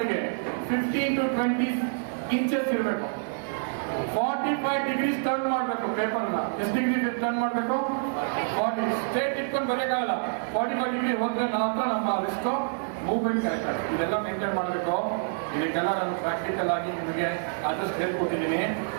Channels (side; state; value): left; silent; digital silence